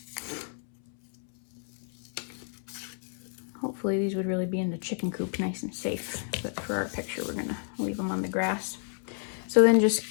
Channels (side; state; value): right; silent; 58 dB below the other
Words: Hopefully these would really be in the chicken coop nice and safe, but for our picture we're gonna leave them on the grass. So then just